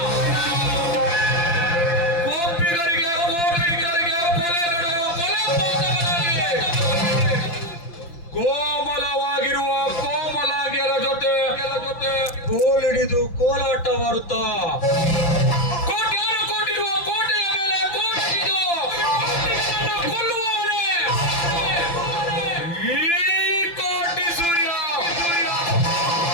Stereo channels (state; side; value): late; right; 5.8 ms